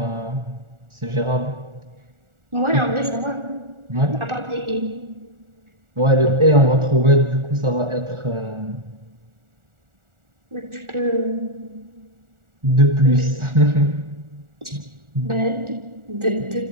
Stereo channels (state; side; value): late; left; 1.4 ms